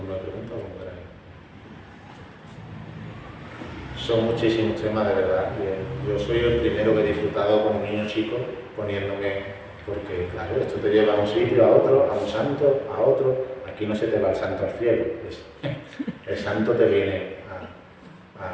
de preguntas como queráis. Son muchísimos temas, de verdad. Yo soy el primero que he disfrutado con un niño chico poniéndome, porque claro, esto te lleva a un sitio, a otro, a un santo, a otro. Aquí no se te va el santo al cielo. El santo te viene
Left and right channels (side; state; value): both; identical; correlation 1.00